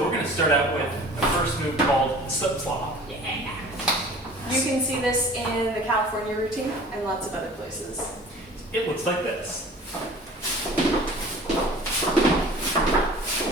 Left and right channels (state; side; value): normal; both; correlation 0.45